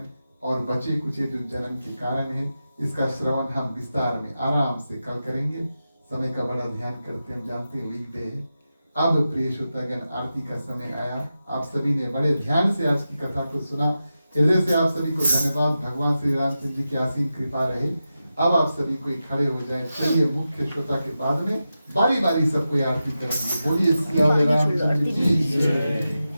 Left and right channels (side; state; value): both; inverted; correlation -0.91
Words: और बचे कुचे जो जन्म के कारण है, इसका श्रवण हम विस्तार में आराम से कल करेंगे। समय का बड़ा ध्यान करते, हम जानते हैं वीकडे है। अब प्रिय श्रोतागण आरती का समय आया। आप सभी ने बड़े ध्यान से आज की कथा को सुना। हृदय से आप सभी को धन्यवाद। भगवान श्री रामचंद्र जी की असीम कृपा रहे। अब आप सभी कोई खड़े हो जाए। चलिए मुख्य श्रोता के बाद में बारी बारी सबको आरती करेंगे। बोलिए श्री रामचंद्र जी की जय।